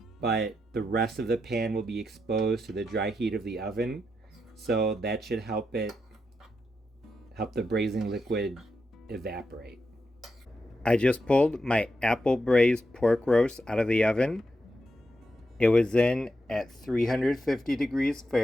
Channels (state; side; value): normal; both; correlation 0.85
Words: but the rest of the pan will be exposed to the dry heat of the oven. So that should help the braising liquid evaporate. I just pulled my apple braised pork roast out of the oven. It was in at 350 degrees